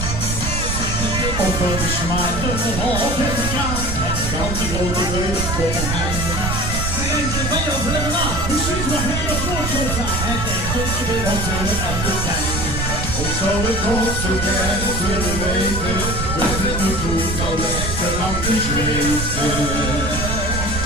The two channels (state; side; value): noise; right; rumble, 3 dB below the sound